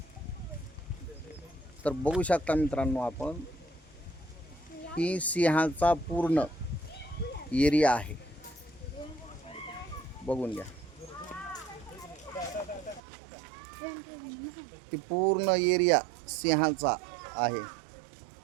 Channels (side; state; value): left; drops out; at 13.0 s